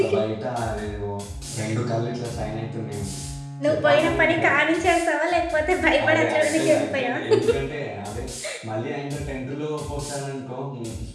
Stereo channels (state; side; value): identical; both; correlation 1.00